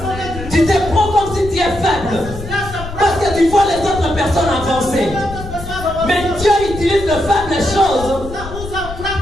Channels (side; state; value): left; noise; rumble, 11 dB below the sound